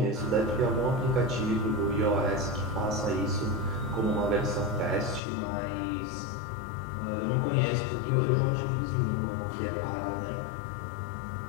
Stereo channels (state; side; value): drops out; right; at 5.2 s